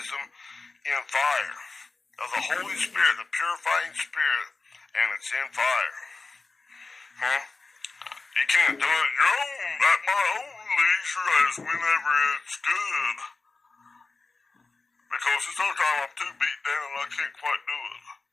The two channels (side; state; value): right; quieter; 3.8 dB